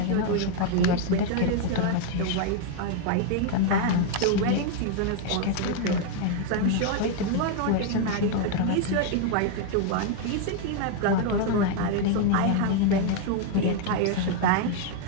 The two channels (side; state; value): both; different; correlation 0.01